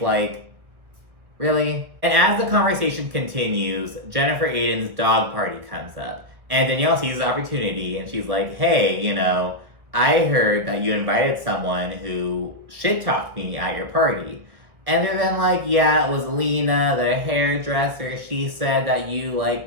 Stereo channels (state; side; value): late; left; 1.6 ms